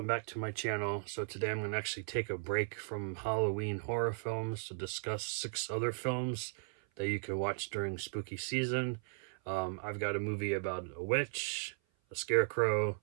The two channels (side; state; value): left; silent; 53 dB below the other